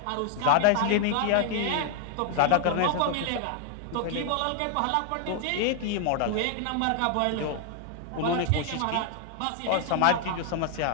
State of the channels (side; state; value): both; different; correlation 0.00